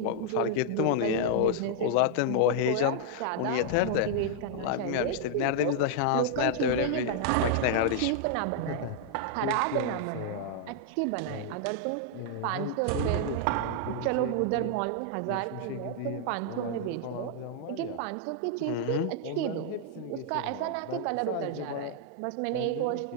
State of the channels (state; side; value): different; both; correlation -0.01